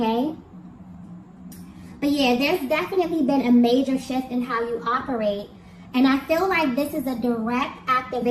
But yeah, there's definitely been a major shift in how you operate. And I feel like this is a direct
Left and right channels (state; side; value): identical; both; correlation 1.00